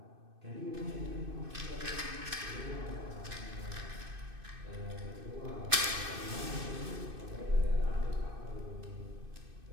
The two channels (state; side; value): late; left; 2.6 ms